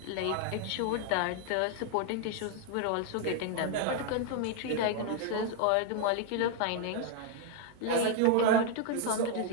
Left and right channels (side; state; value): both; different; correlation 0.00